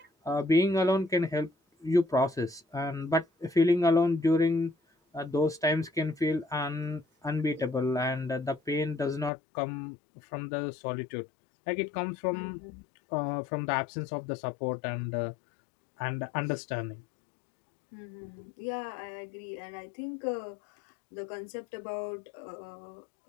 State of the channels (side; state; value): right; drops out; at 9.3 s